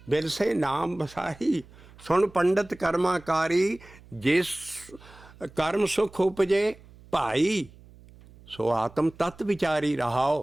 ਬਿਰਸੇ ਨਾਮ ਬਸਾਈ, ਸੁਣ ਪੰਡਤ ਕਰਮਾਕਾਰੀ, ਜਿਸ ਕਰਮ ਸੁਖ ਉਪਜੇ ਭਾਈ, ਸੋ ਆਤਮ ਤਤ ਵਿਚਾਰੀ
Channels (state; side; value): noise; right; hum, 23 dB below the sound